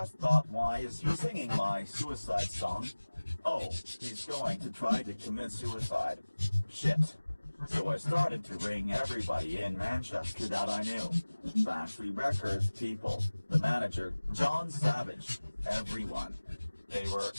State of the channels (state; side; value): inverted; both; correlation -1.00